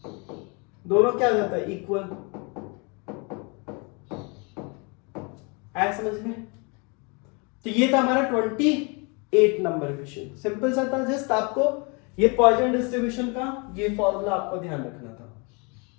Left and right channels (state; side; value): quieter; right; 31.9 dB